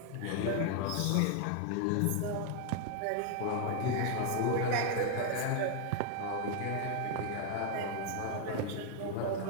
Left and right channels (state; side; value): different; both; correlation 0.00